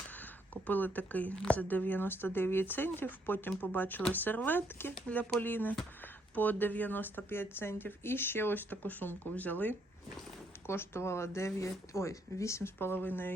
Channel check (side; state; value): both; normal; correlation 0.72